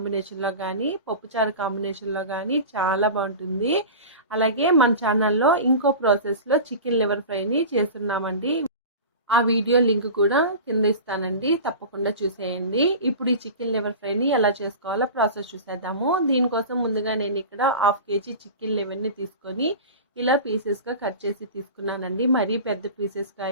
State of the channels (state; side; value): inverted; both; correlation -0.33